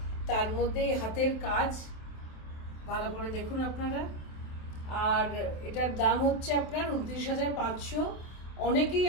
তার মধ্যে হাতের কাজ ভালো করে দেখুন আপনারা। আর এটার দাম হচ্ছে আপনার 29,500। অনেকেই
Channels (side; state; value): right; late; 27 ms